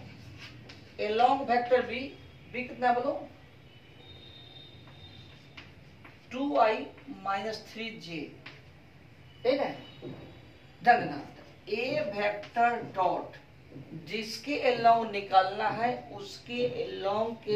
along vector b, b कितना बोलो 2i माइनस 3j, ठीक है। ध्यान देना, ए वेक्टर डॉट जिसके along निकालना है उसके along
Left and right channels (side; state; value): both; identical; correlation 1.00